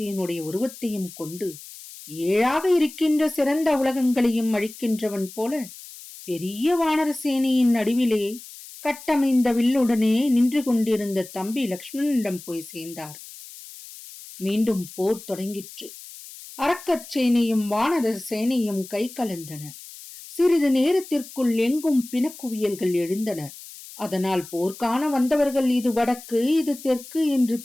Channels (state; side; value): noise; left; hiss, 16 dB below the sound